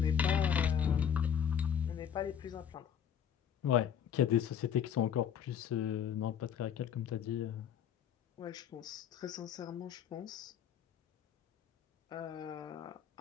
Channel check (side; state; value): right; quieter; 8.6 dB